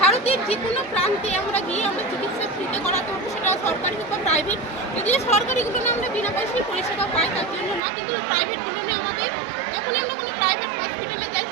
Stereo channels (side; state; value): left; drops out; at 7.8 s